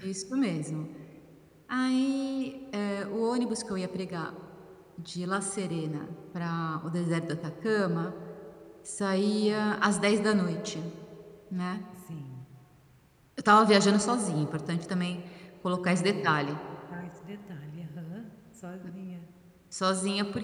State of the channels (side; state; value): both; identical; correlation 1.00